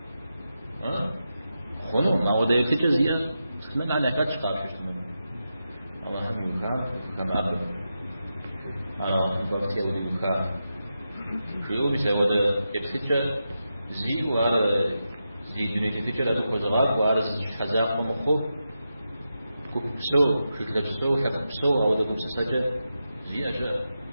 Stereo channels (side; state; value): both; inverted; correlation -0.89